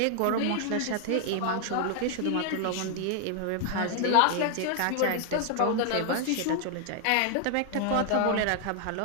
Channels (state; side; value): different; both; correlation 0.00